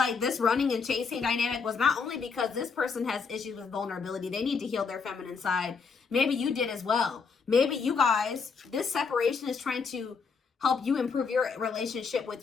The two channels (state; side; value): quieter; right; 5.3 dB